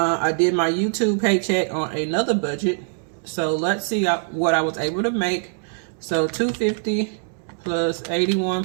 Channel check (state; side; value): silent; left; digital silence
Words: did my YouTube paycheck on another budget, so let's see what I was able to make. So $250 plus